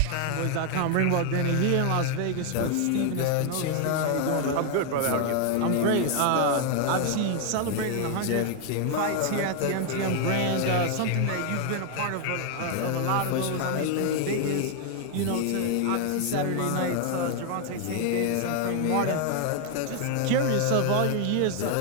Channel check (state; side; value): different; both; correlation 0.00